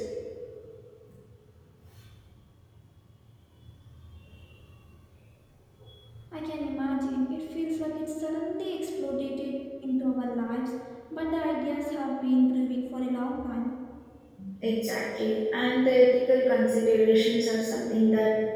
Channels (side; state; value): both; identical; correlation 1.00